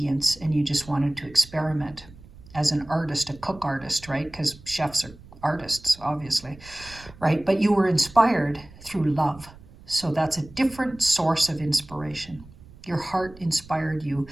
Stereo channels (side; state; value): right; noise; rumble, 20 dB below the sound